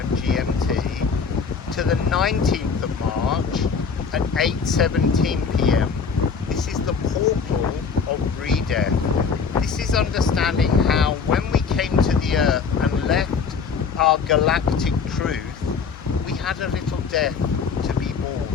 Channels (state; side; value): quieter; right; 5.8 dB